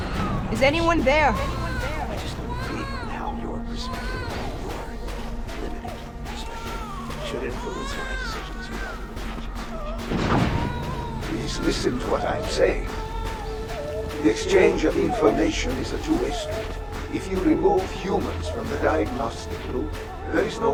Is anyone there? I just don't feel how your perspective, your limited perspective, should influence my decisions regarding the Please listen to what I'm saying. The exchange of information is a two-way street. If you remove humans from the diagnostic loop, there is no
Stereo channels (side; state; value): both; identical; correlation 1.00